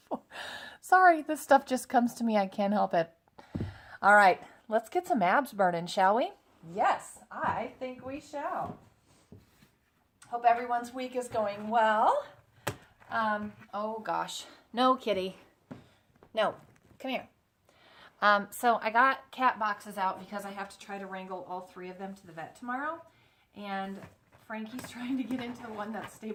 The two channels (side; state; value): both; identical; correlation 1.00